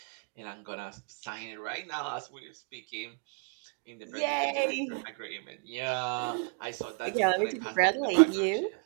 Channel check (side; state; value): left; quieter; 39.4 dB